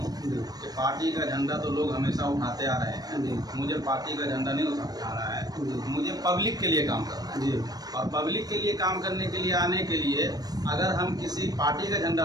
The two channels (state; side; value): late; left; 0.19 ms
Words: कि पार्टी का झंडा तो लोग हमेशा उठाते आ रहे हैं, मुझे पार्टी का झंडा नहीं उठाना है, मुझे पब्लिक के लिए काम करना है जी। और पब्लिक के लिए काम करने के लिए आने के लिए अगर हम किसी पार्टी का झंडा